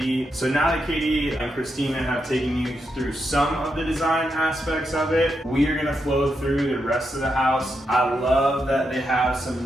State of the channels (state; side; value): normal; both; correlation 0.84